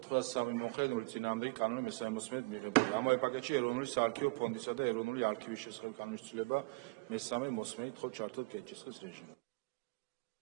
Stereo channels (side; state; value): left; quieter; 27.1 dB